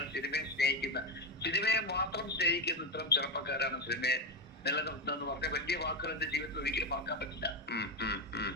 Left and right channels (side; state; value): both; normal; correlation 0.11